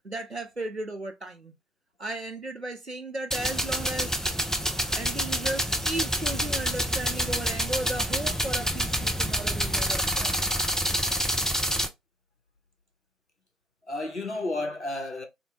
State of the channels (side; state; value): both; normal; correlation 0.58